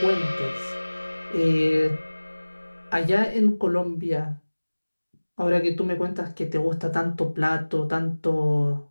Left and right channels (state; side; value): inverted; both; correlation -1.00